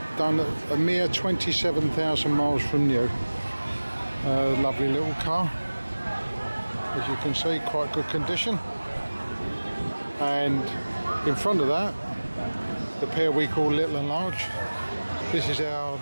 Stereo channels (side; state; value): both; inverted; correlation -1.00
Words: done a mere 27,000 miles from new. Lovely little car. As you can see, quite good condition. And in front of that, the pair we call Little and Large. This is our